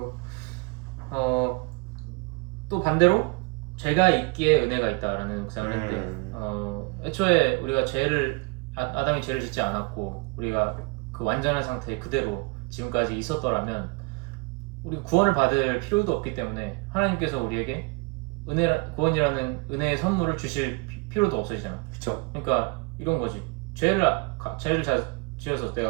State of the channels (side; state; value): left; quieter; 28.3 dB